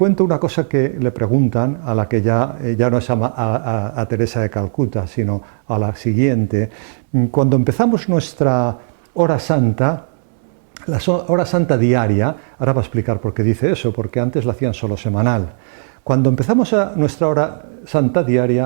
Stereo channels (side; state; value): left; silent; 68 dB below the other